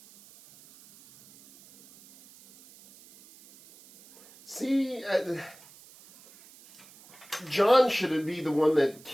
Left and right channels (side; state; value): right; noise; hiss, 24 dB below the sound